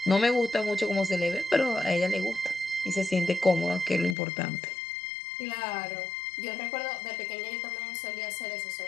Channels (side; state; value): right; drops out; at 4.2 s